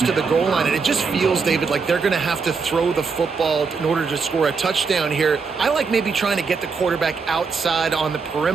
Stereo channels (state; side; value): quieter; left; 5.0 dB